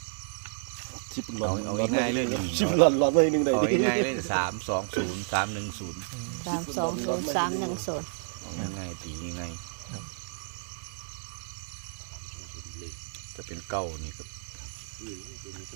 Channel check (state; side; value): silent; left; digital silence